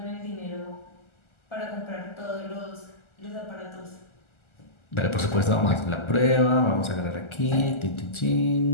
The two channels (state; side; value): late; right; 1.4 ms